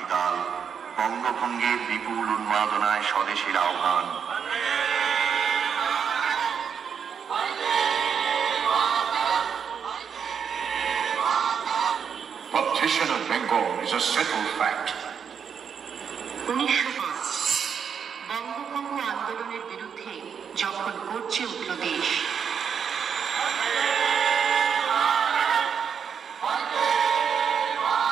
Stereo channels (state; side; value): quieter; left; 7.2 dB